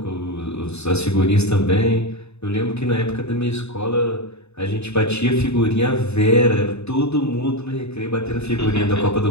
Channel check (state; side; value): late; right; 0.80 ms